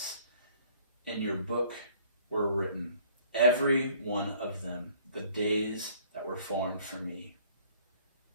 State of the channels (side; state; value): both; inverted; correlation -0.58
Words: In your book were written, every one of them, the days that were formed for me,